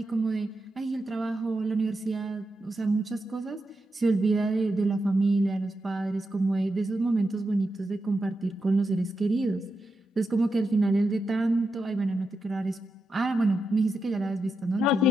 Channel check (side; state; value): both; normal; correlation 0.87